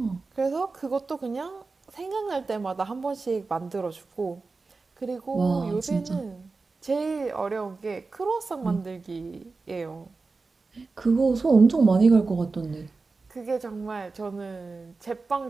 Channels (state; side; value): quieter; left; 4.0 dB